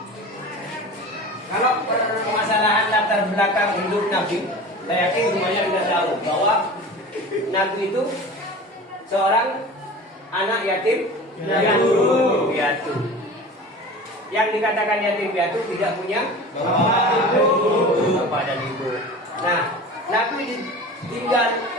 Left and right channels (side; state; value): both; normal; correlation 0.36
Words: Kalau permasalahan latar belakang hidup Nabi, saya yakin semuanya sudah tahu bahwa Nabi itu seorang anak yatim piatu. Yang dikatakan yatim piatu tidak punya bapak dan ibu. Nah, Nabi ditinggal,